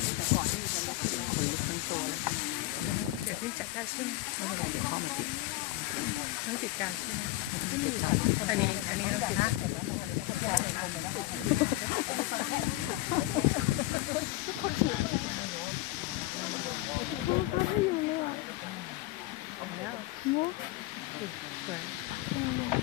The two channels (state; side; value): quieter; right; 18.1 dB